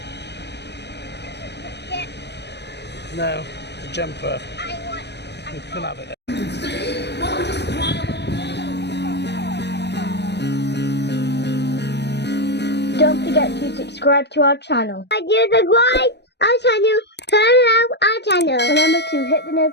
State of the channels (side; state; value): right; late; 0.50 ms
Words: No, the jumper. You can have it. Don't forget to subscribe to our channel. Subscribe our channel. Turn on our channel. Remember to hit the